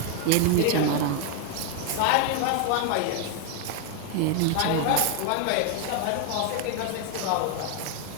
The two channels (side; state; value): both; different; correlation 0.00